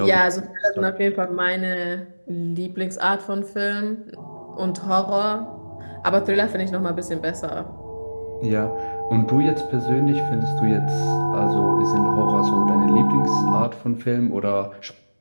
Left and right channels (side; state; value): both; inverted; correlation -1.00